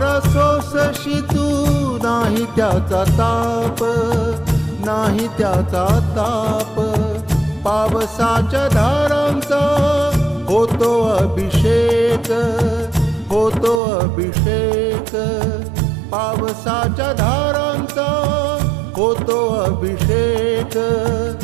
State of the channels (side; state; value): left; drops out; at 13.8 s